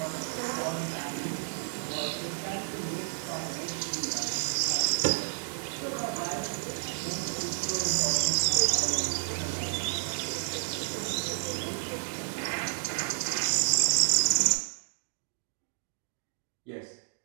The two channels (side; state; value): left; silent; digital silence